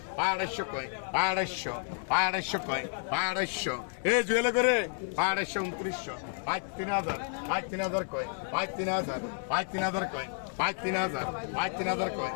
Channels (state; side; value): silent; right; 57 dB below the other